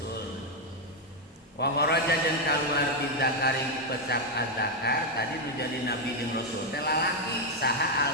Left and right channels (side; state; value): both; normal; correlation 0.03